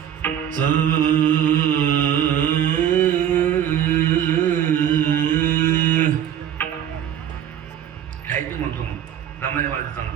खायचं म्हणतो मग दमाने वाजत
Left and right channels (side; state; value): left; quieter; 10.0 dB